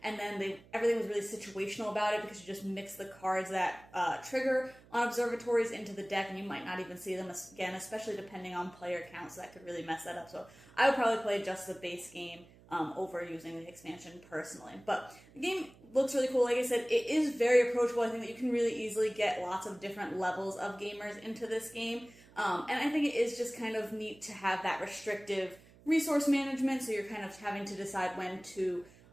And then everything was really situational about it because you just mix the cards that trigger on observatories into the deck, and you might not even see them again, especially depending on player count, so that could really mess that up. So I would probably play just the base game over using the expansion personally. But the game looks really cool. Like I said, it is very approachable. I think that you can really easily get lots of different levels of gamers into this game. And I think it is just kind of neat to have that restrictive resource management, so you're kind of having to decide when to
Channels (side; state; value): right; noise; hum, 24 dB below the sound